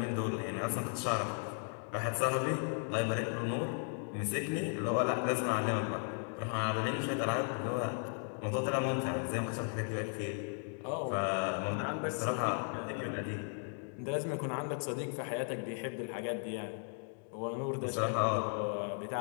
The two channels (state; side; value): silent; right; 54 dB below the other